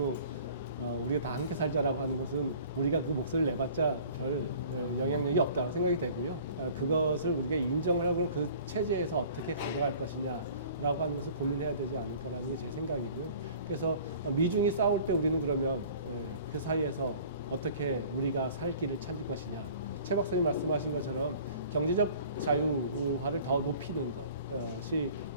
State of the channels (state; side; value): inverted; both; correlation -0.48